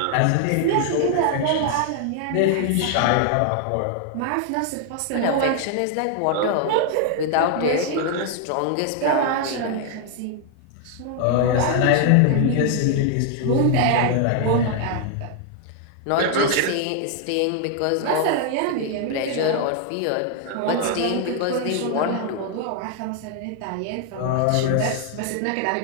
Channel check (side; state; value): both; different; correlation 0.00